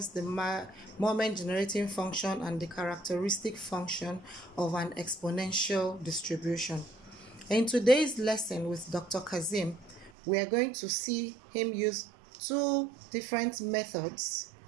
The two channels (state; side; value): drops out; left; at 10.1 s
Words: the moment generating function, and the characteristic function of an exponential distribution. In today's lesson with Dr. Kazim, we are going to see him use two different methods